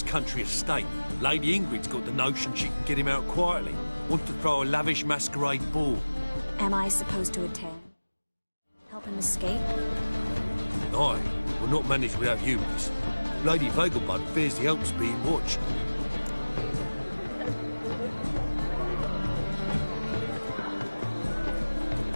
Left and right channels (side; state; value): both; inverted; correlation -1.00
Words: country estate. Lady Ingrid's got the notion she can get him out quietly. Wants to throw a lavish masquerade ball. Am I supposed to attend? Help him escape? Aye, we'll not manage without you, miss. Lady Vagelbud fears the help's being watched.